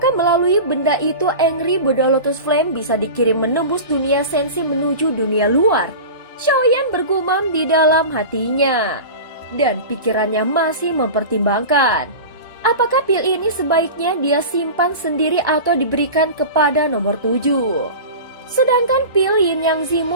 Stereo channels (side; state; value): both; inverted; correlation -0.31